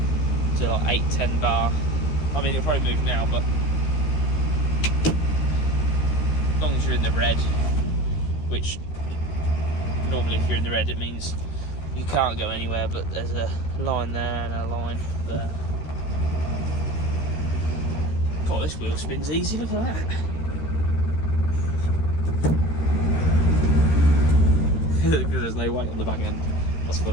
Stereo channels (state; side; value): late; right; 13 ms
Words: to like 8-10 bar. I mean, it'll probably move now, but as long as you're in the red, which normally if you're in the red it means you can't go anywhere, but there's a line there and a line there. God, this wheel spins easy, look at that. Because there's no weight on the back end. That's